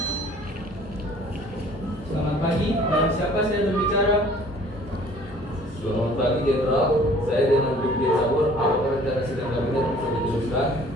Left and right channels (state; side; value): normal; both; correlation 0.53